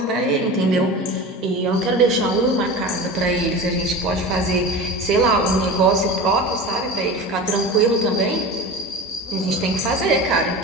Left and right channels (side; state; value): both; normal; correlation 0.32